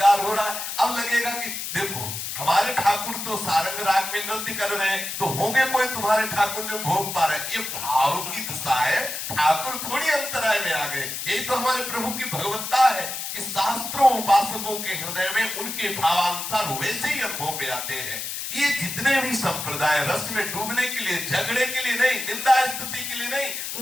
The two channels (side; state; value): left; noise; hiss, 5 dB below the sound